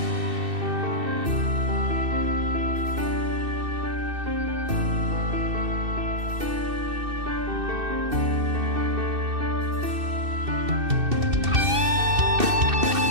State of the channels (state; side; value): late; left; 2.6 ms